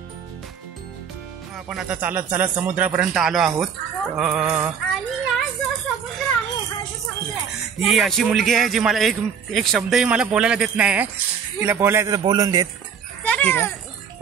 आपण आता चालत चालत समुद्रापर्यंत आलो आहोत. आणि हा जो समुद्र आहे, हा जो समुद्र आहे, ही अशी मुलगी आहे जी मला एक शब्दही मला बोलायला देत नाही. तिला बोलायचं तर बोलून देत.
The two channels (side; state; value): left; quieter; 7.2 dB